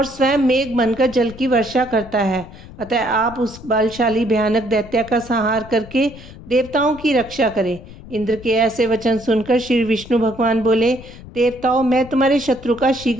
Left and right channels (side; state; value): left; noise; rumble, 17 dB below the sound